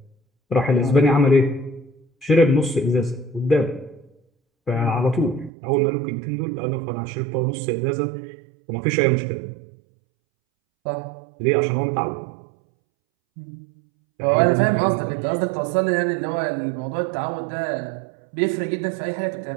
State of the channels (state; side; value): drops out; left; at 5.5 s